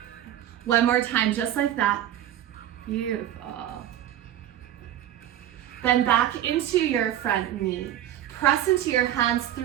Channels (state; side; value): quieter; left; 11.8 dB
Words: One more time, just like that. Beautiful. Then back into your front knee. Press into your hands,